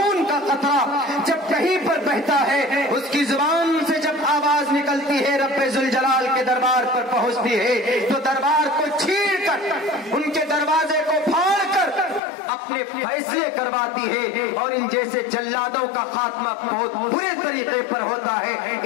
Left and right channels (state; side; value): drops out; right; at 12.2 s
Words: کا قطرہ جب کہیں پر بہتا ہے، اس کی زبان سے جب آواز نکلتی ہے رب ذوالجلال کے دربار پر پہنچتی ہے، تو دربار کو چھین کر، ان کے دروازے کو پھاڑ کر اپنے فیصلے کرواتی ہے، اور ان جیسے جلادوں کا خاتمہ بہت برے طریقے پر ہوتا ہے۔